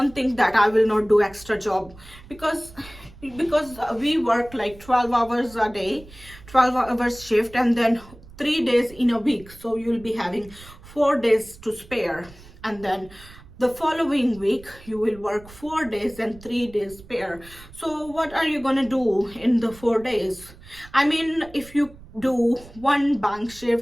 think that I will not do extra job, because we work like 12 hours a day, 12 hours shift, and then 3 days in a week, so you'll be having 4 days to spare. And then the following week you will work 4 days and 3 days pair. So what are you gonna do in the 4 days? I mean, if you do one bank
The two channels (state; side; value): noise; right; rumble, 20 dB below the sound